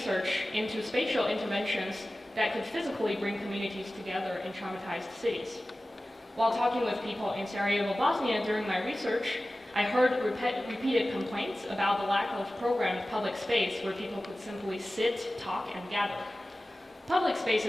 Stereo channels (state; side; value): normal; both; correlation 0.96